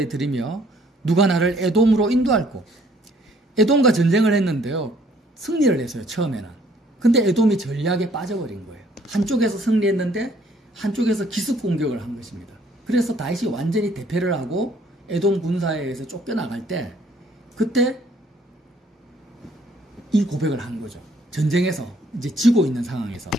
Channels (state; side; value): normal; both; correlation 0.62